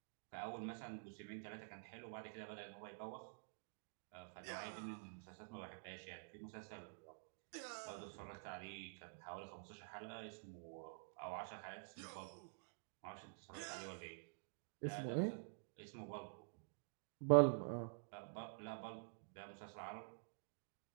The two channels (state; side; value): silent; left; digital silence